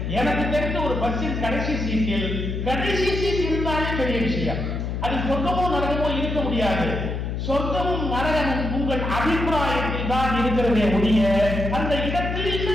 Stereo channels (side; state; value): left; noise; hum, 3 dB below the sound